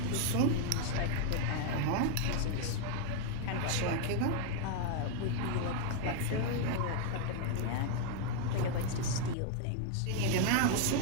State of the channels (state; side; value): different; both; correlation 0.00